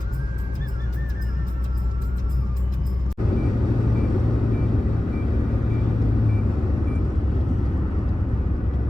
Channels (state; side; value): normal; both; correlation 0.96